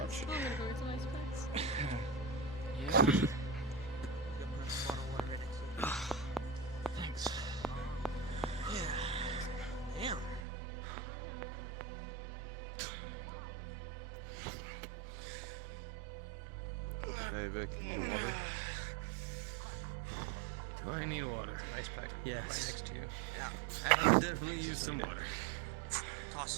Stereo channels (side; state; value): left; drops out; at 10.4 s